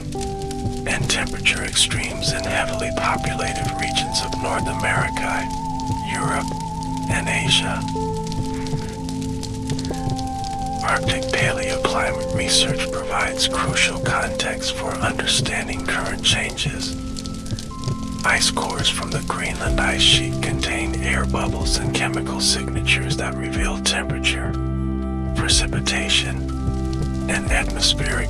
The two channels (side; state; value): both; identical; correlation 1.00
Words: and temperature extremes in heavily populated regions of North America, Europe, and Asia. Arctic paleoclimate research provides crucial context for understanding current changes. Ice cores from the Greenland ice sheet contain air bubbles and chemical signatures that reveal temperature, precipitation, and